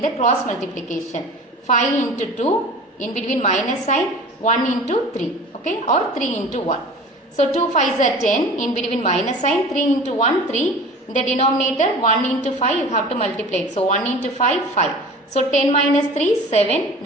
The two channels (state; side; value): normal; both; correlation 0.40